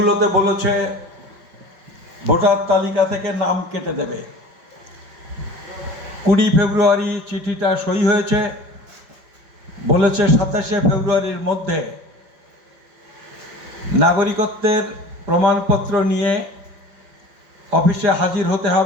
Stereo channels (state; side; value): late; left; 5.5 ms